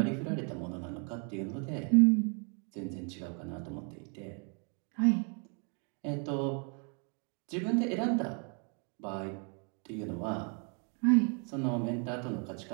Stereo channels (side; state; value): left; quieter; 38.5 dB